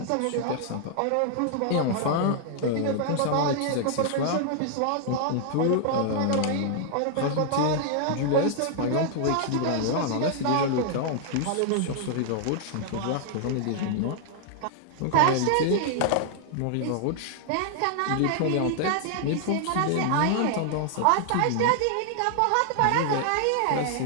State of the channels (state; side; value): different; both; correlation -0.01